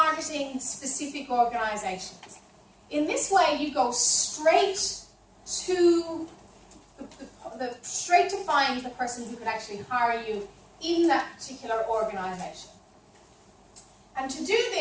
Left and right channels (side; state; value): both; identical; correlation 1.00